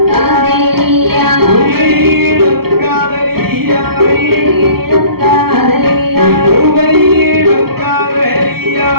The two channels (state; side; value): late; left; 0.95 ms